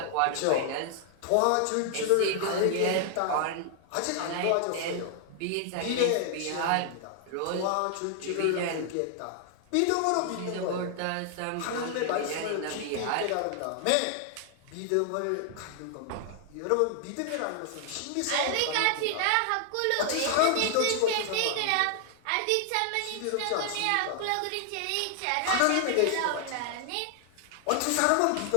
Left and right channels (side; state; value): both; different; correlation 0.00